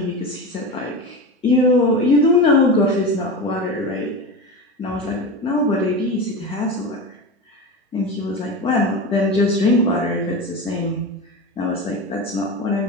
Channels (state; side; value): normal; both; correlation 0.24